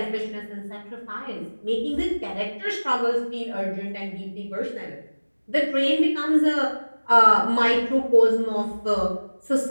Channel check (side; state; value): both; inverted; correlation -1.00